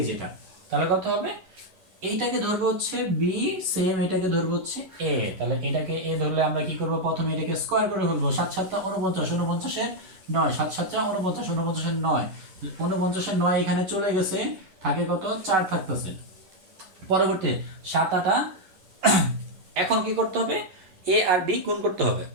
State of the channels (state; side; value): late; left; 11 ms